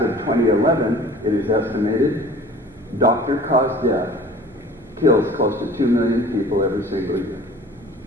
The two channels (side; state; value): both; normal; correlation 0.46